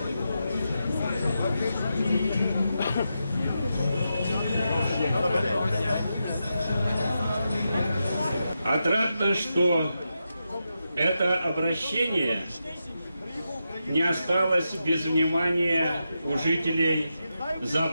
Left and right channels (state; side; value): inverted; both; correlation -0.87